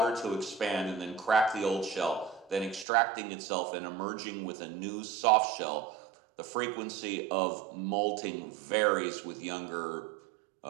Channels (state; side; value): drops out; left; at 2.9 s